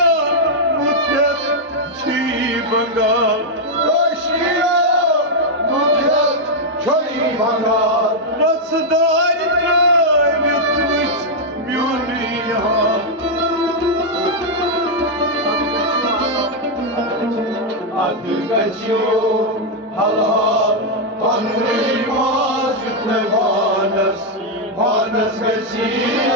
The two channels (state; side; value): normal; both; correlation -0.02